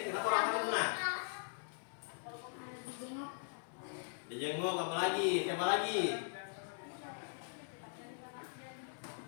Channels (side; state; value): right; silent; digital silence